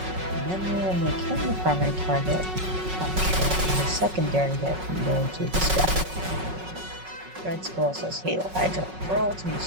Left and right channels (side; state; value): left; late; 5.4 ms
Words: And then when we kill the primary target, the secondary hit can go to the sky. Red Skull says, "Hail Hydra for